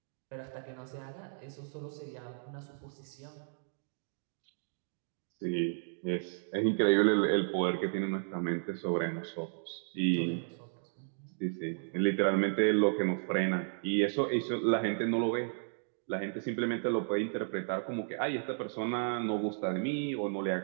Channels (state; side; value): silent; left; digital silence